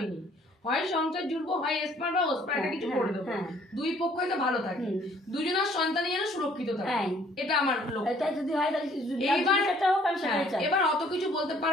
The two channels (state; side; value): normal; both; correlation 0.60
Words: হয় সংসার জুড়বো, হয় এসপার বা ওসপার, এটা কিছু করে দেবো, দুই পক্ষই তো ভালো থাকে, দুজনের সন্তানই যেন সুরক্ষিত থাকে, এটা আমার লক্ষ্য। এবার অত কিছু বলতে